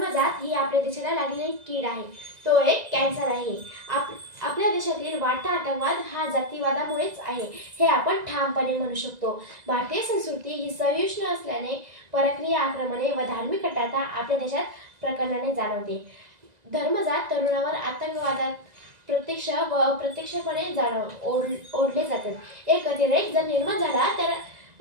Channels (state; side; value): late; left; 1.9 ms